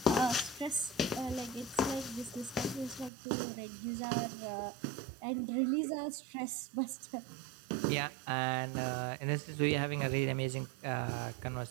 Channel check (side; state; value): left; drops out; at 3.1 s